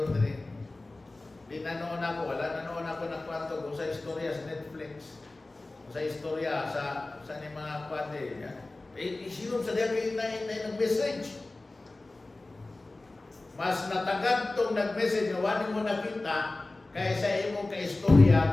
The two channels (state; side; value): quieter; right; 3.0 dB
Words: rin. Di nanoon ako, wala nanoon ako na kwanto kung sa istorya sa Netflix. Sa istorya, sa ni mga kwante. Isinong sa diya kayo na nag-message. Mas natagad itong nag-message na wani mo nakita kaysa imong ka-istorya